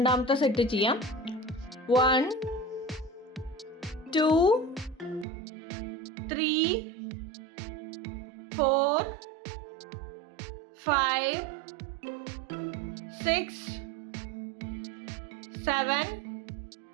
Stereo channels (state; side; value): drops out; left; at 5.2 s